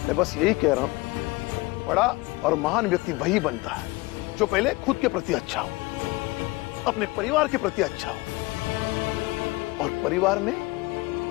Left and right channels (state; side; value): quieter; right; 22.9 dB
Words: मैं बस यही कह रहा हूं, बड़ा और महान व्यक्ति वही बनता है जो पहले खुद के प्रति अच्छा हो, अपने परिवार के प्रति अच्छा हो, और परिवार में